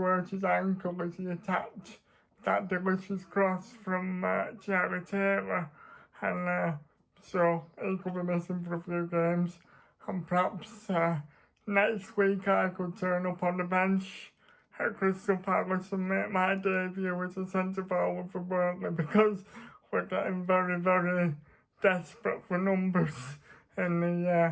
hurt his ankle as he attacked that delicious cross from Charlie Taylor, and so he could be missing for a few games, and perhaps next week I could turn up on the bench at Crystal Palace and make my debut as a centre forward for Burnley, because we're getting very, very desperate for numbers in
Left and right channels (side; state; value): both; identical; correlation 1.00